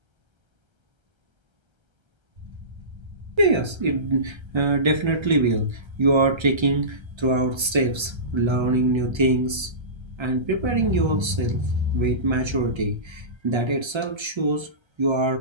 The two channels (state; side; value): late; left; 1.3 ms